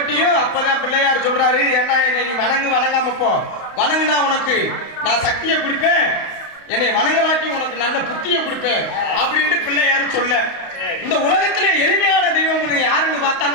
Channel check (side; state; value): right; late; 32 ms